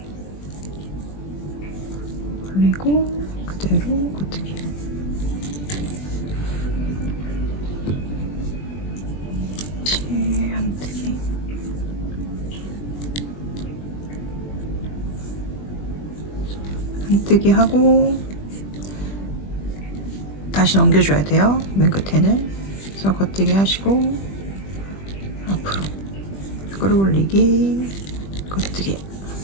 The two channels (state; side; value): late; right; 20 ms